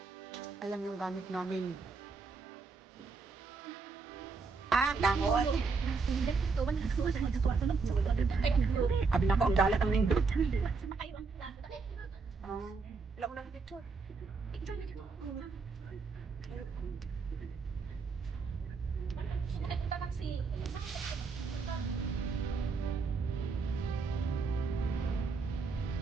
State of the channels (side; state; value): left; quieter; 4.6 dB